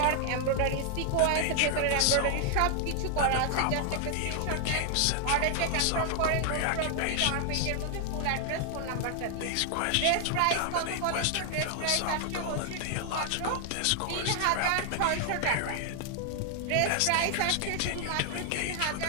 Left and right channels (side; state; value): both; different; correlation 0.00